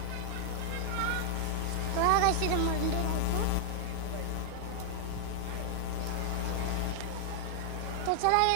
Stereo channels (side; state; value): both; different; correlation 0.00